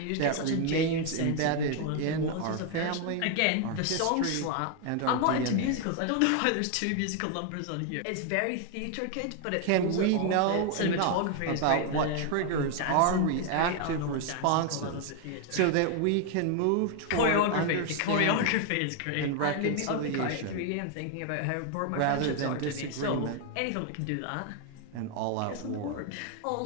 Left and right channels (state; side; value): different; both; correlation 0.00